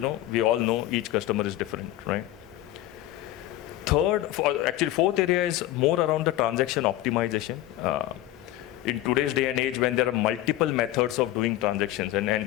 all know each customer is different, right? Fourth area is more around the transaction optimization. In today's day and age, when there are multiple methods of doing transactions, and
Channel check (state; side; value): quieter; right; 14.9 dB